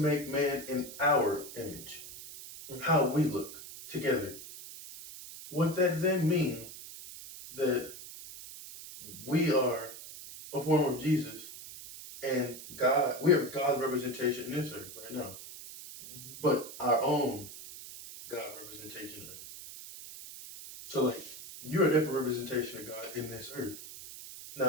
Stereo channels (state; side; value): noise; right; hiss, 13 dB below the sound